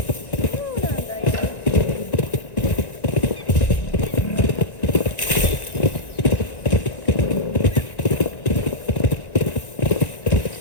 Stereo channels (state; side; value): late; right; 1.9 ms